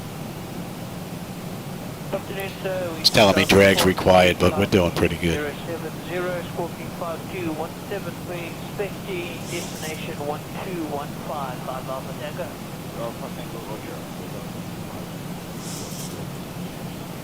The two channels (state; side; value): identical; both; correlation 1.00